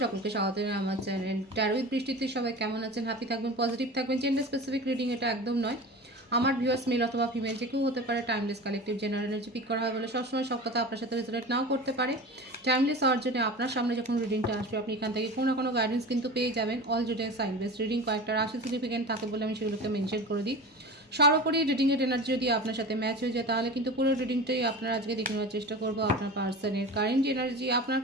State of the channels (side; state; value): both; normal; correlation 0.33